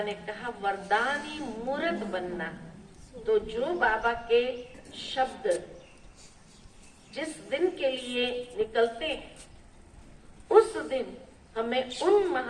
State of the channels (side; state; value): both; identical; correlation 1.00